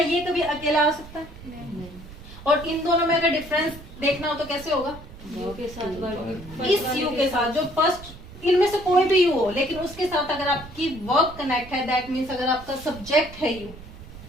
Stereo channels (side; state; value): right; noise; rumble, 16 dB below the sound